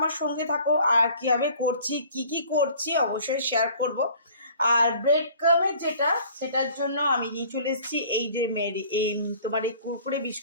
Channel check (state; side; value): inverted; both; correlation -0.51